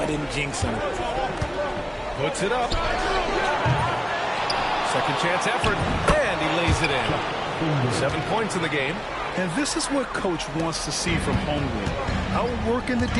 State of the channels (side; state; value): both; identical; correlation 1.00